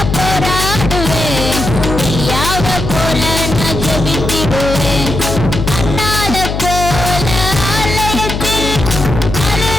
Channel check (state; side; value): noise; left; hum, 3 dB below the sound